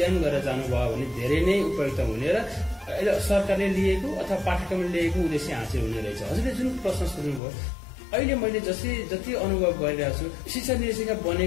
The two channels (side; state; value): right; drops out; at 7.4 s